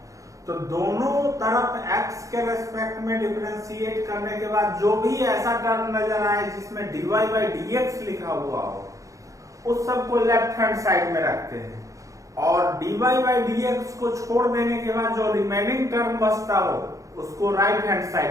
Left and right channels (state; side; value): late; left; 0.16 ms